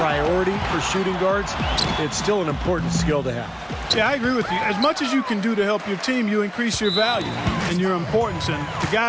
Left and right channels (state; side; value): identical; both; correlation 1.00